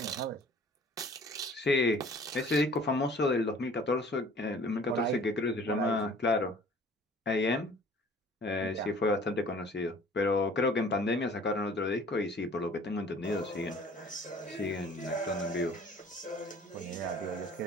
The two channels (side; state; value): both; normal; correlation 0.50